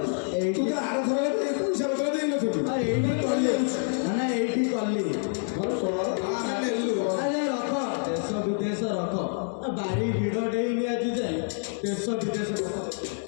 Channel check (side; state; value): right; silent; 60 dB below the other